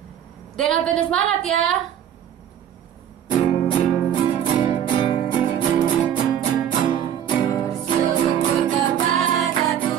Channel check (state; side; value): quieter; left; 9.8 dB